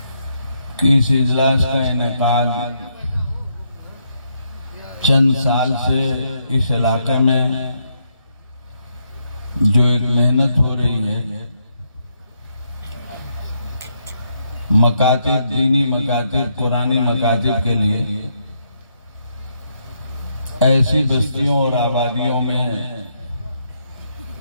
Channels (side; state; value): both; inverted; correlation -0.77